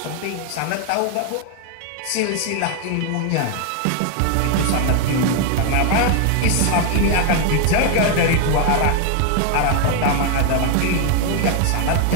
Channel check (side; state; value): both; different; correlation 0.01